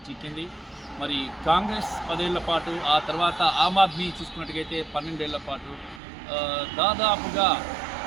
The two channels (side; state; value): left; drops out; at 6.0 s